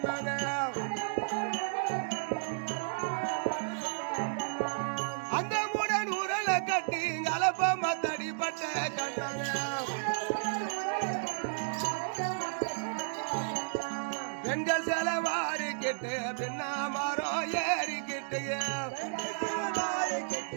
அந்த முடன் உரலை கட்டி கலப்பம் தடிப்பட்ட கண்ணனே பெண்கள் செலவாரிக்கிட்டு பின்னா மரம் ஏறிக்கிட்டு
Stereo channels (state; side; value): silent; left; digital silence